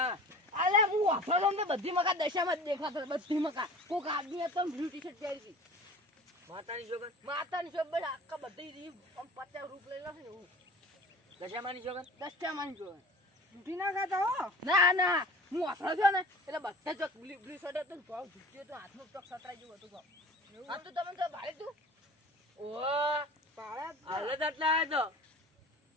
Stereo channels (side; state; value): both; normal; correlation 0.41